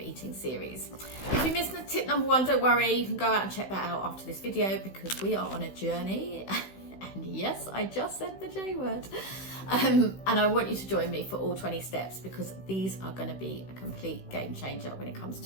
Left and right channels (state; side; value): late; right; 16 ms